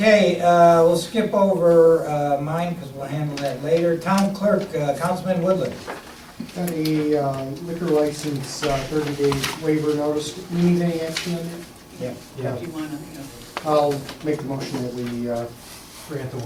we'll skip over mine because we'll handle that later. Town Clerk, Councilman Woodland. Got a liquor license, 30-day waiver notice. We need any action on it? Yeah. Yeah. I'll make the motion that we grant the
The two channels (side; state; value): both; identical; correlation 1.00